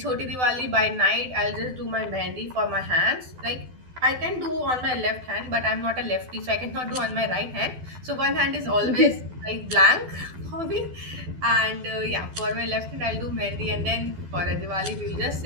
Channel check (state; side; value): late; left; 12 ms